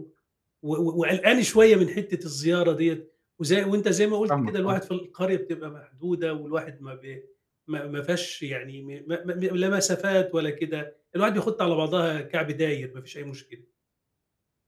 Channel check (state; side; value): identical; both; correlation 1.00